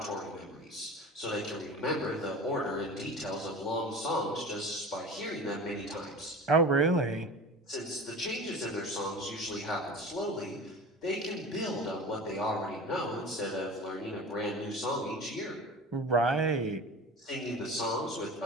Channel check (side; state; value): both; normal; correlation 0.35